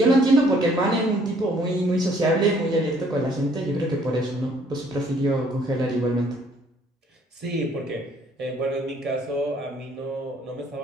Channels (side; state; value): both; normal; correlation 0.62